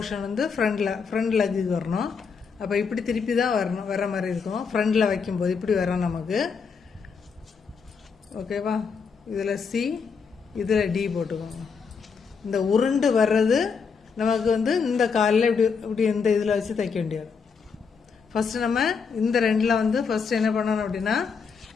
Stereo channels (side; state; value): right; quieter; 5.7 dB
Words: வந்து ஃப்ரண்ட் லெக்குக்கு வரணும். அப்போ இப்படி திருப்பி தான் வர மாதிரி இருக்கும். ஃப்ரண்டில் வைக்கும்போது இப்படி வரும் நமக்கு. ஓகேவா? இதில் சி, இதில் டி போட்டுக்கோங்க. இந்த உருண்டு வர்றது நமக்கு வந்து இந்த காலில் இப்படி இப்படி இந்த இதில் வச்சு தைக்க வேண்டியது. ஃபஸ்ட்டு நம்ம இந்த ரெண்டில் வந்து ஃபஸ்ட்டு என்ன பண்ணணும் அப்படின்னா,